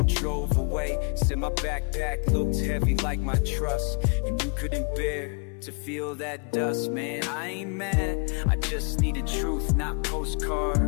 drove away. Said my backpack looked heavy like my trust, and you couldn't bear to feel that dust. Man, I ain't mad, I just needed truth, not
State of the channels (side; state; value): right; quieter; 36.4 dB